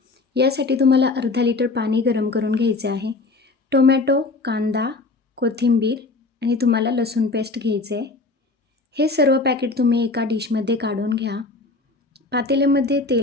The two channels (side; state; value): right; quieter; 3.5 dB